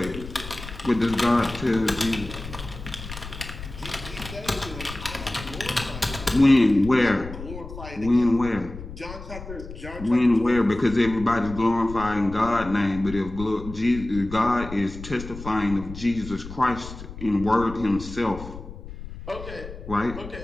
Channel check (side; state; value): left; noise; rumble, 12 dB below the sound